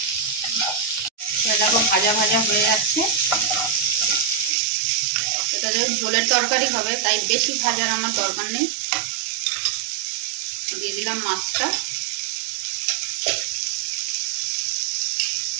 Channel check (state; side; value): drops out; left; at 4.5 s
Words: দেখো, ভাজা ভাজা হয়ে যাচ্ছে। এটা যেহেতু ঝোলের তরকারি হবে, তাই বেশি ভাজার আমার দরকার নেই। দিয়ে দিলাম মাছটা।